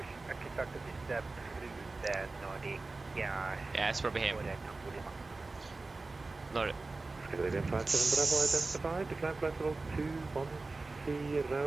Yeah, it's probably him. Nordic. Scandinavian 57 Bravo identified, decline flight level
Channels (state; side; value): quieter; left; 3.5 dB